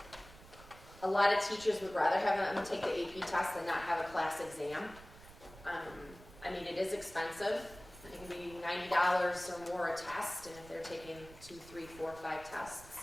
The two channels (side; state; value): right; noise; rumble, 19 dB below the sound